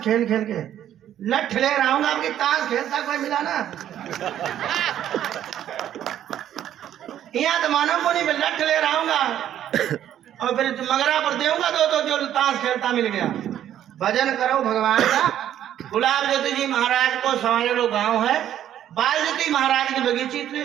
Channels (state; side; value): quieter; left; 11.0 dB